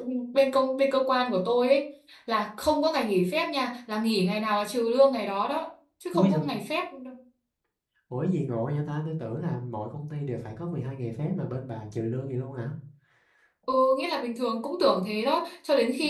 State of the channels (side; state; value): both; identical; correlation 1.00